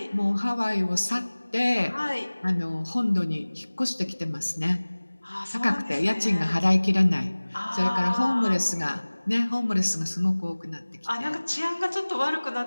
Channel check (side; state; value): both; inverted; correlation -1.00